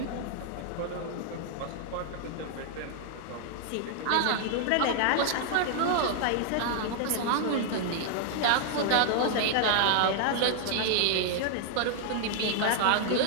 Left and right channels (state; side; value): different; both; correlation -0.01